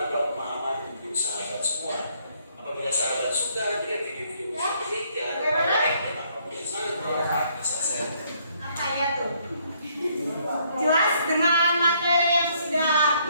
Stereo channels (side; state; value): both; inverted; correlation -0.68